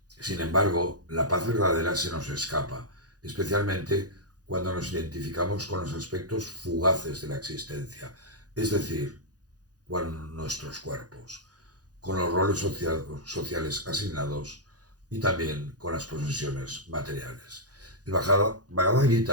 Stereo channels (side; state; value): left; late; 0.68 ms